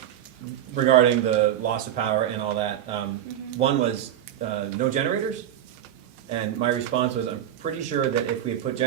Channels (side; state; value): left; quieter; 11.0 dB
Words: regarding the loss of power and all that. One was no generators, and my response was, I'm pretty sure that if we had put